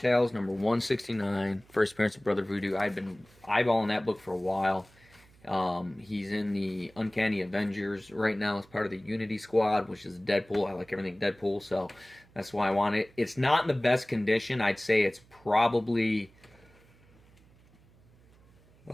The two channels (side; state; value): right; noise; hum, 28 dB below the sound